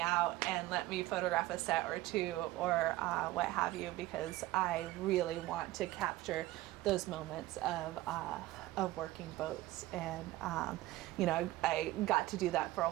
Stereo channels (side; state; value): left; quieter; 17.0 dB